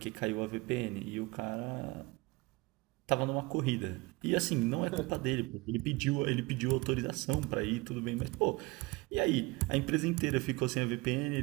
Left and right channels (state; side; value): quieter; left; 23.7 dB